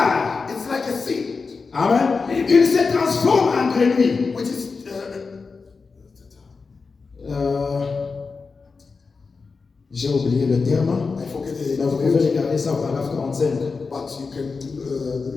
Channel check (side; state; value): right; quieter; 4.6 dB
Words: It's like a seed. Amen. Il se transforme en grenouille. Which is J'ai oublié le terme. I forget Mais vous pouvez regarder ça au paragraphe 45. but you can